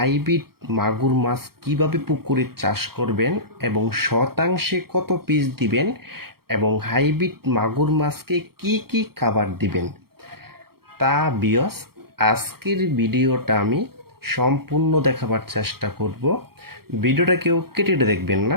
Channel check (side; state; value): left; late; 0.94 ms